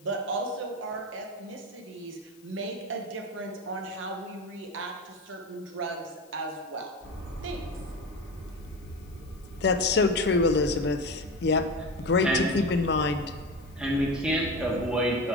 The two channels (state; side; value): noise; left; hiss, 29 dB below the sound